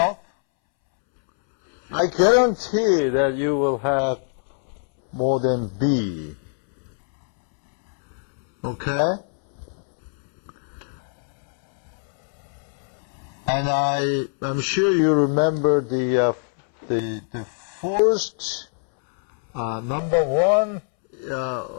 I guarantee that you will have more than B. Okay? And I'm sure you remember the first number one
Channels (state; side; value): silent; right; 63 dB below the other